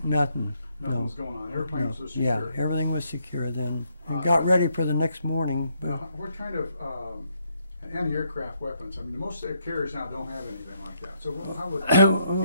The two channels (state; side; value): inverted; both; correlation -0.74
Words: nothing. Nothing No. was going on. Airplanes No. was Yeah, secure. everything was secure then. We got ready for the next morning. But Now, what kind of anti-aircraft weapons? I mean, most carriers now don't have anything like that. So how would